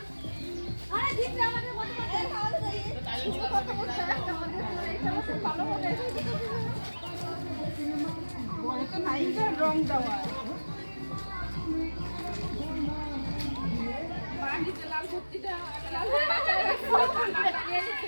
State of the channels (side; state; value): both; inverted; correlation -1.00